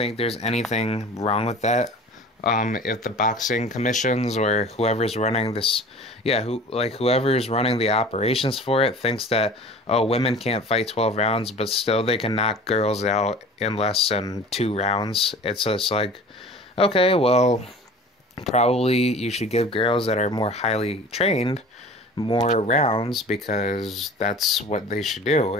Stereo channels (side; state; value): both; normal; correlation 0.42